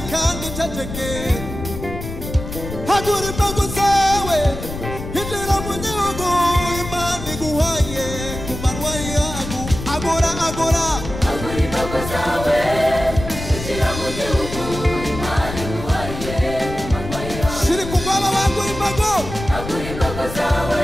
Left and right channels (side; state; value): left; noise; rumble, 8 dB below the sound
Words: kandi uceceke hagura imbago zawe injira mu gihugu Imana iguhaye ku manywa yangu agora agora hagura imbago zawe injira mu gihugu Imana iguhaye ku manywa yawe shiri ku bwaba bagura imbago hagura imbago zawe